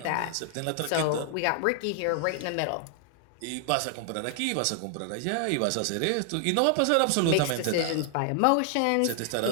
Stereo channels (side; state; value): both; different; correlation 0.00